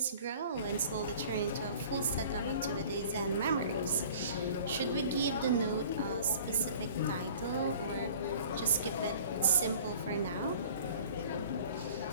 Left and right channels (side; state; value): both; inverted; correlation -0.47